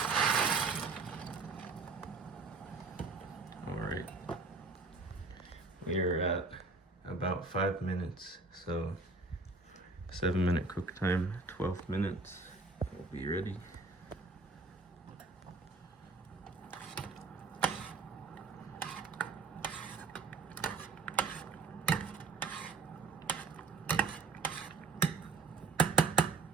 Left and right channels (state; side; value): quieter; left; 4.0 dB